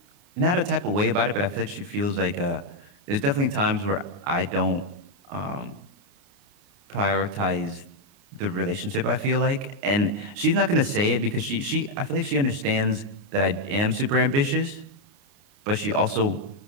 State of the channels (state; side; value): late; left; 29 ms